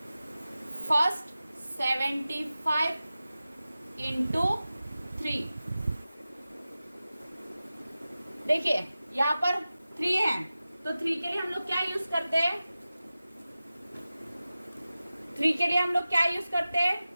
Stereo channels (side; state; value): both; inverted; correlation -0.95